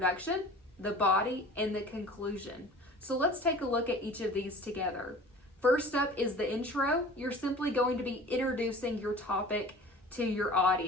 the body, and the conclusion. So let's take a look at each of these together. First up is the intro. You're simply going to be introducing your topic to your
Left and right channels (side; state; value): both; normal; correlation 0.42